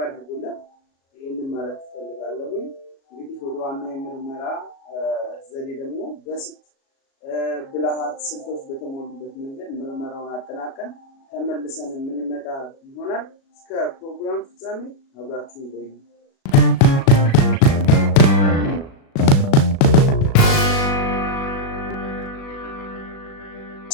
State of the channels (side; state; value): right; late; 37 ms